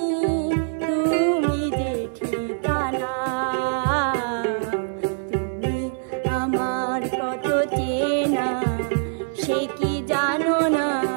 তুমি যে ঠিকানা, তুমি আমার কত চেনা সে কি জানো না,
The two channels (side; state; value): left; silent; 59 dB below the other